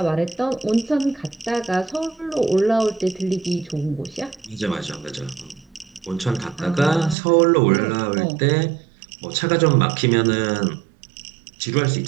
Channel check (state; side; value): drops out; left; at 7.2 s